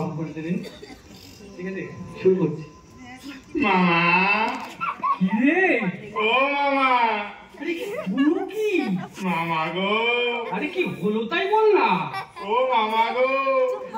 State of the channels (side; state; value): both; identical; correlation 1.00